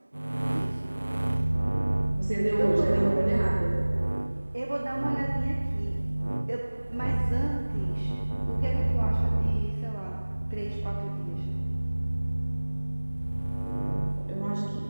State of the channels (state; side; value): inverted; both; correlation -1.00